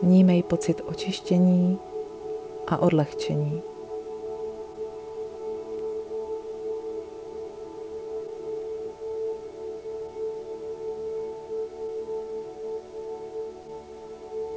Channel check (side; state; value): both; identical; correlation 1.00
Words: Vnímej pocit očištění a odlehčení.